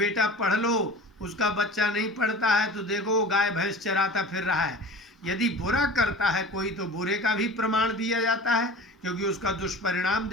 पढ़ लो। उसका बच्चा नहीं पढ़ता है तो देखो गाय भैंस चराता फिर रहा है। यदि बुरा करता है कोई तो बुरे का भी प्रमाण दिया जाता है, क्योंकि उसका दुष्परिणाम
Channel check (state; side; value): normal; both; correlation 0.38